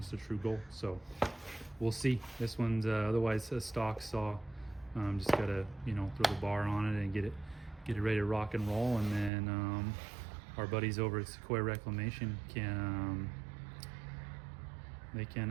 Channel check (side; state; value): left; drops out; at 9.3 s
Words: the true goal. So we'll see. This one's otherwise a stock saw. Just gotta throw the bar on it and get it ready to rock and roll. And then our buddies over at Sequoia Reclamation can